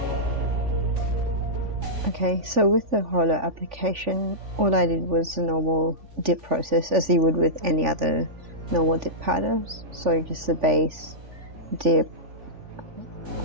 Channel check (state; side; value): late; left; 3.4 ms